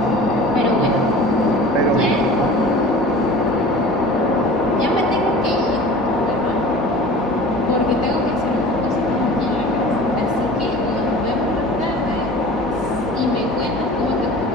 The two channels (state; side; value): normal; both; correlation 0.41